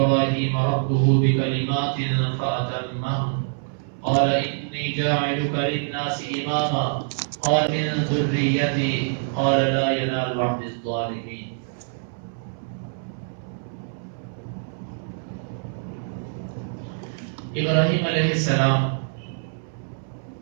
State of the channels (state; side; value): silent; left; 62 dB below the other